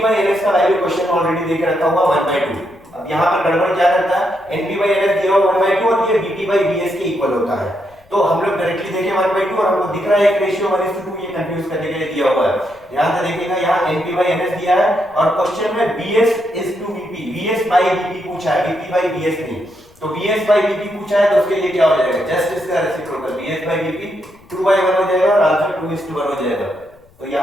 का वैल्यू क्वेश्चन में ऑलरेडी देके रखा हुआ 1/2। अब यहाँ पर गड़बड़ क्या करता है, NP/NS दिया हुआ 1/2 और ये VP/VS के इक्वल होता है। तो हम लोग डायरेक्टली देखें 1/2 और हमको दिख रहा है एक रेशियो 1:2, ये कंफ्यूज करने के लिए दिया हुआ है। ध्यान से देखिएगा, यहाँ NP/NS दिया है और क्वेश्चन में VS/VP, VS/VP पूछा है, VP/VS नहीं। तो VS/VP पूछा है तो उसके लिए क्या हो जाएगा? जस्ट इसका रेसिप्रोकल VS/VP 2/1 हो जाएगा और आंसर 2:1 हो जाएगा। तो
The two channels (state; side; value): noise; left; rumble, 29 dB below the sound